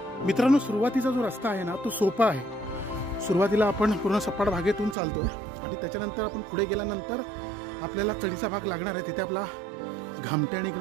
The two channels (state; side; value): drops out; left; at 5.0 s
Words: मित्रांनो, सुरुवातीचा जो रस्ता आहे ना, तो सोपा आहे. सुरुवातीला आपण पूर्ण सपाट भागेतून चालतोय आणि त्याच्यानंतर आपण पुढे गेल्यानंतर आपल्याला चढीचा भाग लागणार आहे. तिथे आपला घामट्या